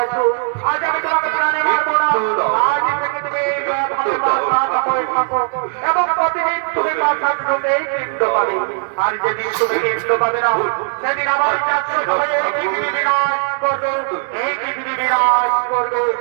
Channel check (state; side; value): silent; left; 67 dB below the other